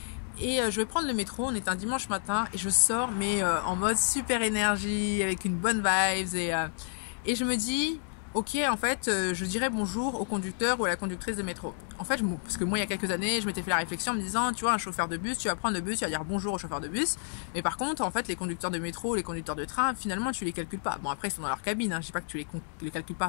et je vais prendre le métro. On était un dimanche matin, et je sors, mais en mode super énergie, avec une bonne vibes, et je me dis, ok, en fait, je dirais bonjour au conducteur ou à la conductrice de métro. En fait, parce que moi, il y a quelques années, je m'étais fait la réflexion en me disant, tu vois, un chauffeur de bus, tu vas prendre le bus, tu vas dire bonjour au chauffeur de bus. Mais par contre, en fait, les conducteurs de métro, les conducteurs de train, finalement, tu les calcules pas. Bon, après, ils sont dans leur cabine, hein. Je dis pas que tu les calcules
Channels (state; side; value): silent; right; digital silence